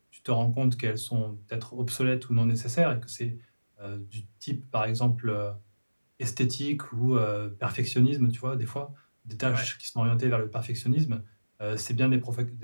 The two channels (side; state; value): both; inverted; correlation -1.00